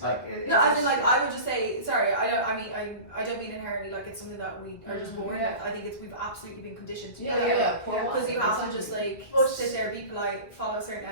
No, as in, like, I would just say, sorry, I don't mean inherently like it's something that we are just born with. I think it's we've absolutely been conditioned to do that. Because you have to just like sit there, be polite, follow a certain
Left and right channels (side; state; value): right; late; 1.6 ms